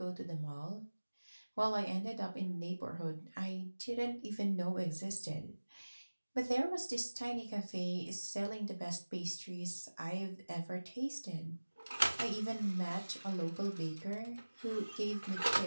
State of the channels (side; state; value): both; inverted; correlation -1.00